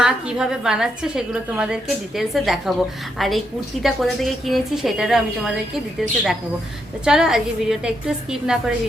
কিভাবে বানাচ্ছে, সেগুলো তোমাদেরকে ডিটেলসে দেখাবো। আর এই কুর্তিটা কোথা থেকে কিনেছি সেটারও আমি তোমাদেরকে ডিটেলসে দেখাবো। তো চলো, আজকে ভিডিওটা একটু স্কিপ না করে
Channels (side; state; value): both; normal; correlation 0.79